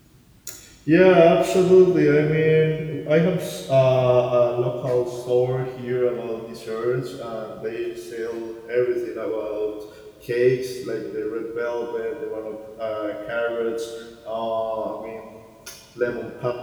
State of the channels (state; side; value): identical; both; correlation 1.00